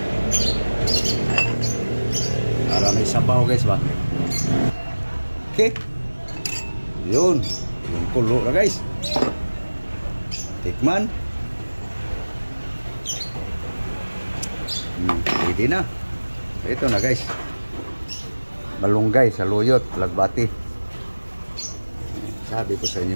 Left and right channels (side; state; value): both; inverted; correlation -1.00